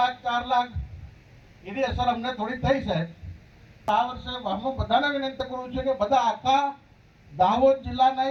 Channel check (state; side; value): identical; both; correlation 1.00